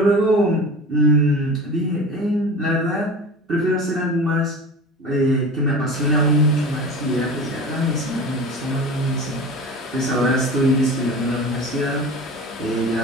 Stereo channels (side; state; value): both; normal; correlation 0.34